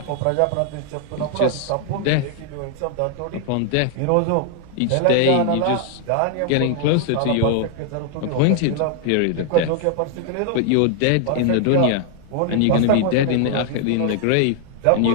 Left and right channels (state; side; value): different; both; correlation 0.00